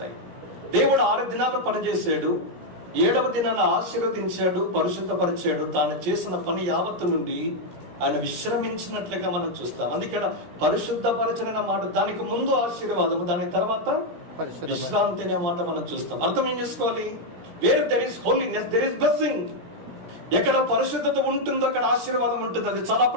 దేవుడు 6 దినాలు పనిచేశాడు, 7వ దినాన్ని ఆశీర్వదించాడు, పరిశుద్ధపరిచాడు. తాను చేసిన పని యావత్తు నుండి ఆయన విశ్రమించినట్లుగా మనం చూస్తాం. అందుకే పరిశుద్ధపరచన మాట, దానికి ముందు ఆశీర్వాదము, దాని తర్వాత విశ్రాంతి అనే మాట మనం చూస్తాం. అర్థం ఏం చేసుకోవాలి? Where there is holiness there is blessing. ఎక్కడ పరిశుద్ధత ఉంటుందో అక్కడ ఆశీర్వాదం ఉంటుంది. అది చాలా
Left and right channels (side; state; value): left; late; 17 ms